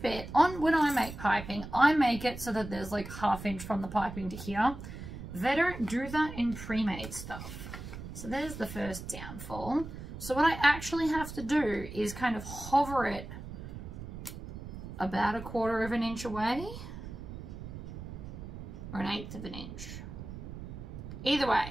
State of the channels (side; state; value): right; noise; rumble, 10 dB below the sound